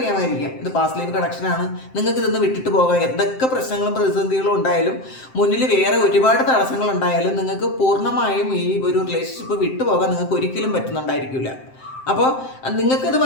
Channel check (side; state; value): right; late; 7.7 ms